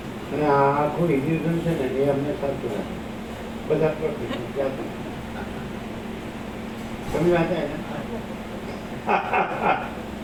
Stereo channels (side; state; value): both; identical; correlation 1.00